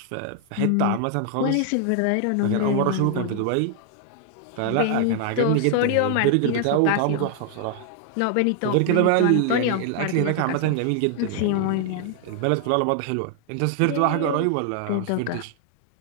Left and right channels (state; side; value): different; both; correlation 0.00